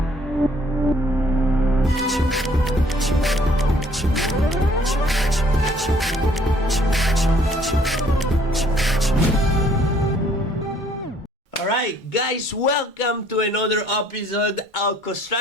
guys, welcome to another episode of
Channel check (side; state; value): both; normal; correlation 0.61